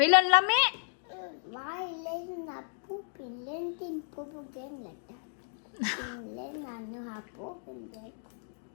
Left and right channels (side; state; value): right; silent; digital silence